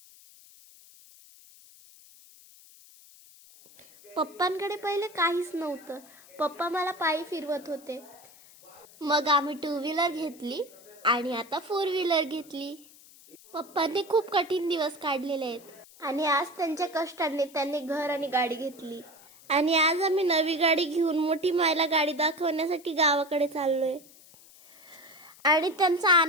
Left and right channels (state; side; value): noise; left; hiss, 23 dB below the sound